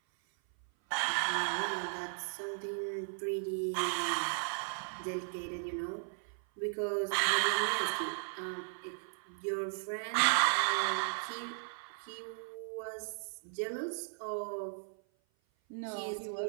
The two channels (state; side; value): silent; left; 54 dB below the other